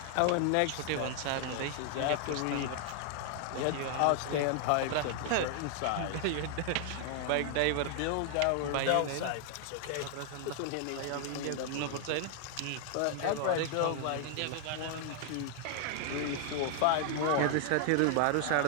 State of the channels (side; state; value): both; different; correlation 0.00